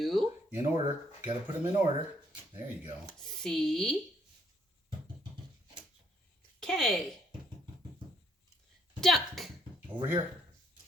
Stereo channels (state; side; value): normal; both; correlation 0.69